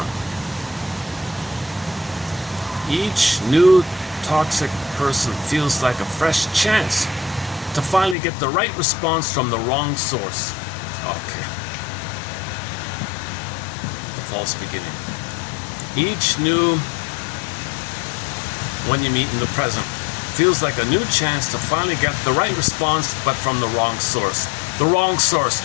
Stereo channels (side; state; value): right; drops out; at 8.2 s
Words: Each new toxic person feels like a fresh chance to finally get the right response from the wrong source. Okay. The false beginning. Each new, when you meet in the present, feels like a new chance to finally get the right response, but from the wrong source. The wrong source.